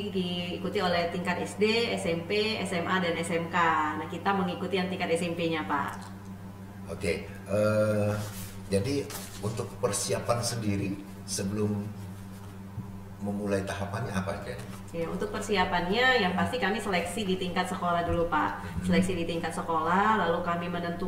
diikuti oleh tingkat SD, SMP, SMA, dan SMK. Nah, kita mengikuti yang tingkat SMP-nya, Pak. Oke, jadi untuk persiapan sendiri sebelum memulai tahapannya apa aja? Ya, untuk persiapannya yang pasti kami seleksi di tingkat sekolah dulu Pak. Seleksi di tingkat sekolah, lalu kami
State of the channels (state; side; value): identical; both; correlation 1.00